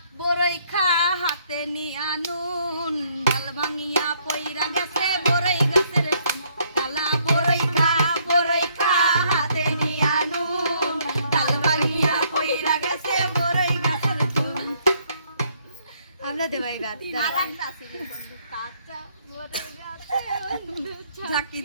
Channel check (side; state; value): both; inverted; correlation -0.68